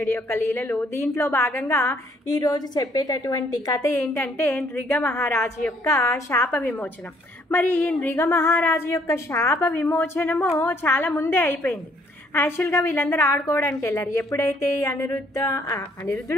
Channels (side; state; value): both; normal; correlation 0.65